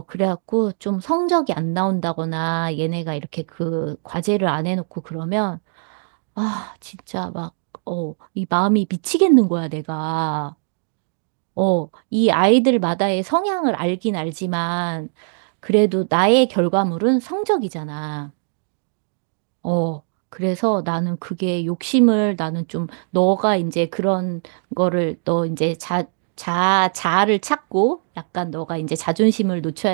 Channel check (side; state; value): left; silent; digital silence